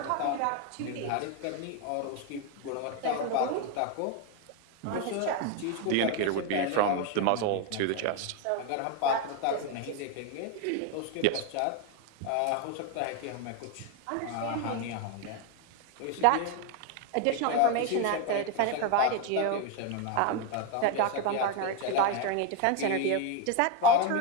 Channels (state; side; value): different; both; correlation 0.02